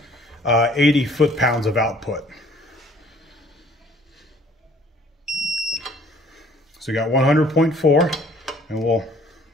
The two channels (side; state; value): both; normal; correlation 0.56